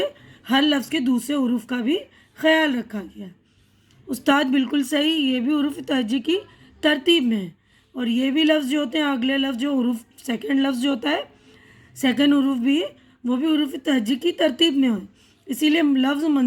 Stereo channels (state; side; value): identical; both; correlation 1.00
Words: ہر لفظ کے دوسرے حروف کا بھی خیال رکھا گیا. استاد بالکل صحیح، یہ بھی حروف تہجی کی ترتیب میں ہے، اور یہ بھی لفظ جو ہوتے ہیں اگلے لفظ جو حروف سیکنڈ لفظ جو ہوتا ہے سیکنڈ حروف بھی وہ بھی حروف تہجی کی ترتیب میں ہو. اسی لیے لفظ